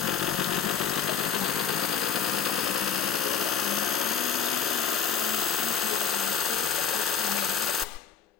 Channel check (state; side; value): quieter; right; 7.3 dB